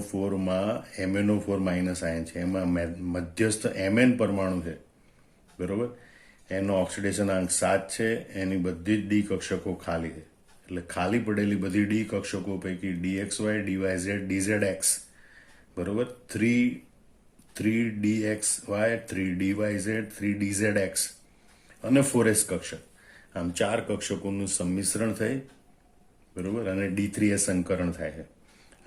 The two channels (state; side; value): identical; both; correlation 1.00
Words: MnO4 માઇનસ આયન છે, એમાં મધ્યસ્થ Mn પરમાણુ છે. બરોબર. એનો ઓક્સિડેશન અંક 7 છે. એની બધી જ ડી કક્ષકો ખાલી છે. એટલે ખાલી પડેલી બધી ડી કક્ષકો પૈકી DXY, DYZ, DZX બરોબર 3DXY, 3DYZ, 3DZX અને 4S કક્ષક આમ 4 કક્ષકોનું સંમિશ્રણ થઈ બરોબર અને D3S સંકરણ થાય છે